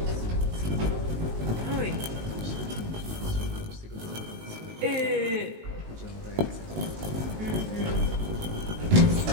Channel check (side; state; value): left; late; 19 ms